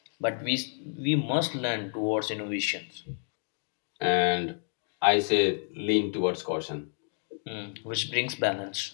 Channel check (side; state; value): right; silent; 58 dB below the other